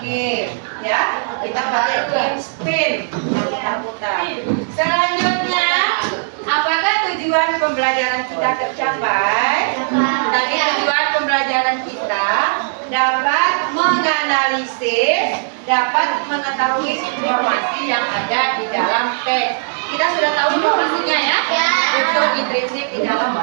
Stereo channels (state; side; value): silent; left; digital silence